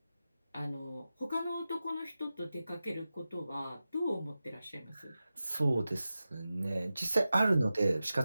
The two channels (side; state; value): both; inverted; correlation -0.94